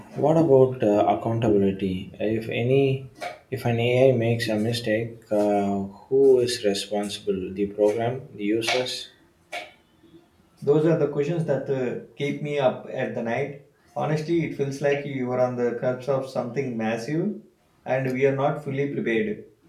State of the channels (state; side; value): identical; both; correlation 1.00